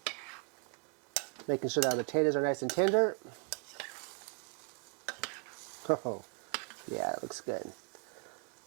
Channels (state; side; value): quieter; left; 36.7 dB